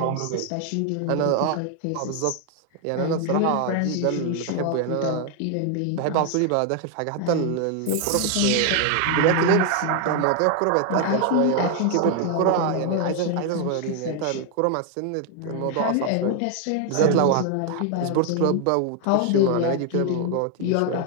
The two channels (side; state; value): both; different; correlation 0.00